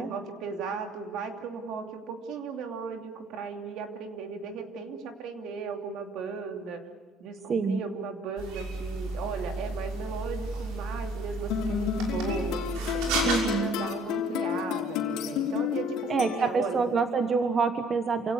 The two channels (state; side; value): normal; both; correlation 0.58